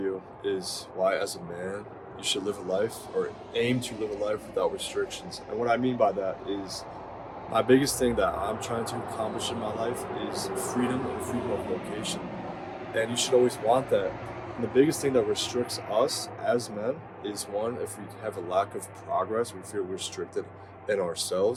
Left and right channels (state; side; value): identical; both; correlation 1.00